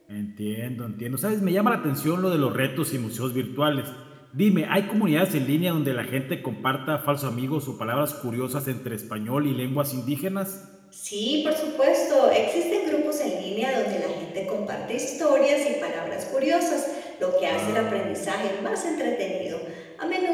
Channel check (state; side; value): identical; both; correlation 1.00